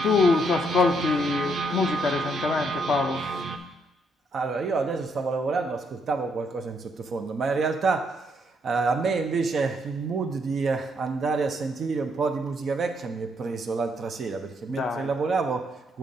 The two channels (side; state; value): both; normal; correlation 0.74